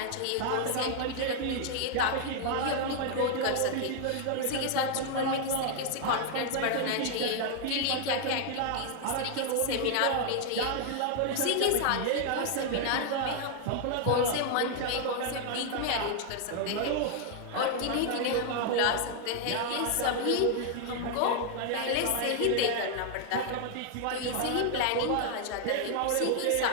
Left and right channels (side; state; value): both; different; correlation 0.00